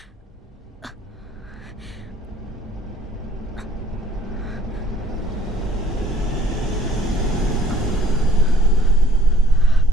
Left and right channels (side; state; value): both; normal; correlation 0.56